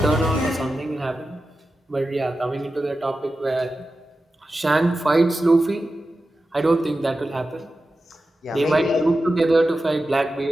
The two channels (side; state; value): both; normal; correlation 0.93